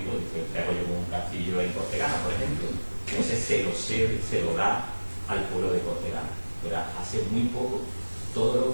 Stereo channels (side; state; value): both; inverted; correlation -1.00